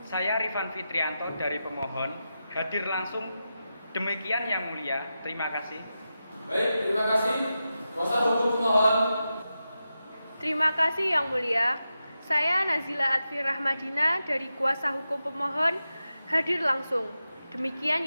Saya Rifan Fitrianto dari pemohon hadir langsung. Demikian Yang Mulia. Terima kasih. Baik, terima kasih. Kuasa hukum pemohon. Terima kasih Yang Mulia. Saya Nazila Atfi Rahmadina dari kuasa hukum pemohon hadir langsung. Demikian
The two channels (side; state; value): both; inverted; correlation -0.90